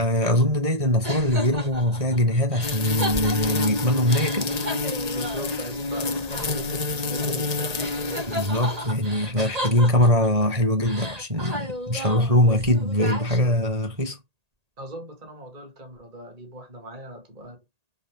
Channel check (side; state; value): left; late; 1.8 ms